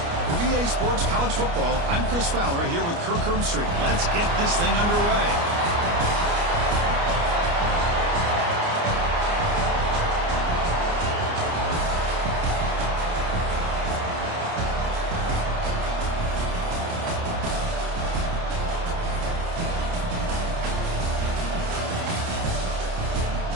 For EA Sports College Football, I'm Chris Fowler here with Kirk Herbstreit. Let's get this thing underway.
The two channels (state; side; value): late; left; 29 ms